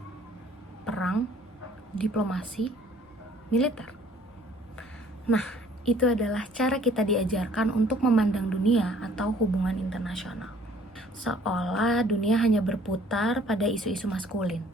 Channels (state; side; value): normal; both; correlation 0.57